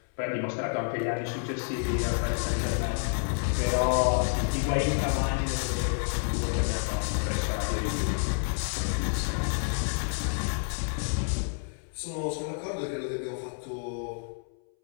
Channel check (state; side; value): silent; right; 58 dB below the other